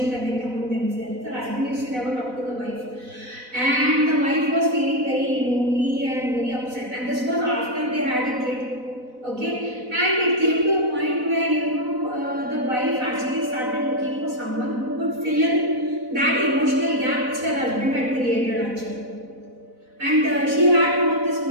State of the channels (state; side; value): late; left; 4.0 ms